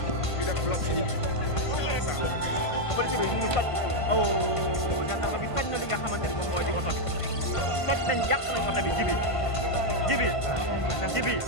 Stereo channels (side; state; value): right; late; 1.5 ms